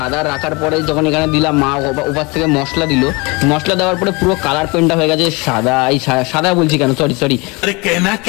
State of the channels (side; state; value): right; quieter; 27.0 dB